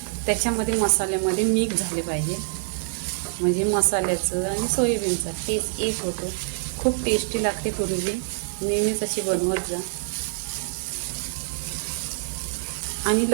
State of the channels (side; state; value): left; silent; digital silence